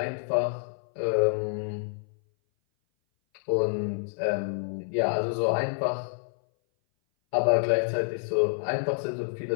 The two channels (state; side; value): silent; right; 58 dB below the other